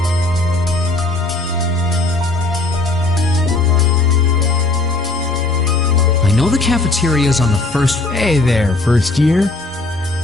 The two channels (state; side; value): quieter; right; 3.1 dB